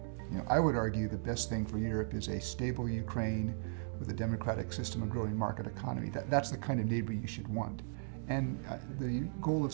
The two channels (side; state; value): left; silent; digital silence